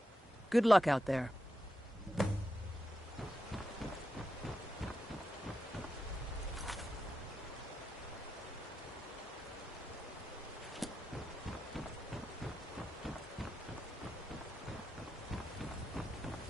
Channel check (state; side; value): normal; both; correlation 0.87